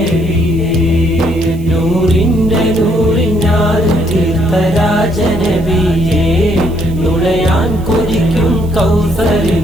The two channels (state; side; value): noise; right; hiss, 25 dB below the sound